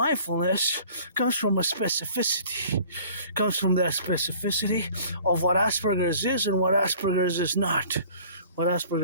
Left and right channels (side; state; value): both; inverted; correlation -0.49